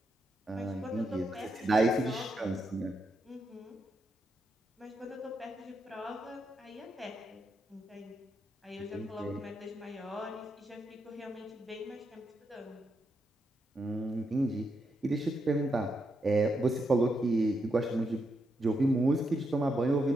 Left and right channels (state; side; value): normal; both; correlation 0.82